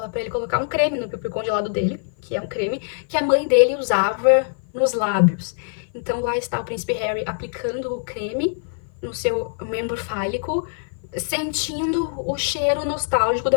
pra ele colocar um creme no piu-piu congelado dele, que é um creme que a mãe dele usava nos lábios. Então lá está o príncipe Harry aplicando o creme no seu membro fálico, sentindo o cheiro nostálgico da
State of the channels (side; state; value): right; silent; 56 dB below the other